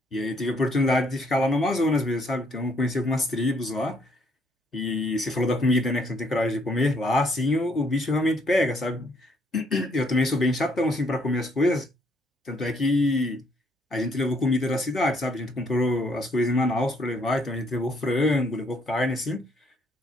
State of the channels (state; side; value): normal; both; correlation 0.69